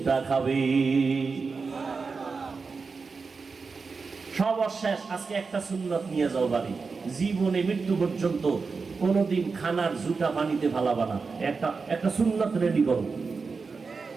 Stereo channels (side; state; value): left; quieter; 4.7 dB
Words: খাবে। সর্বশেষ আজকে একটা সুন্নত নিয়ে যাও বাড়ি, জীবনে মৃত্যু পর্যন্ত কোনদিন খানার জুটা পানিতে ফালাবা না। একটা সুন্নত রেডি করো,